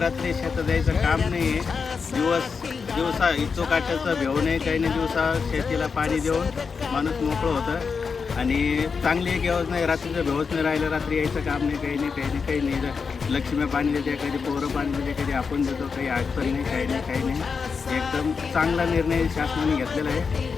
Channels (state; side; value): quieter; right; 5.4 dB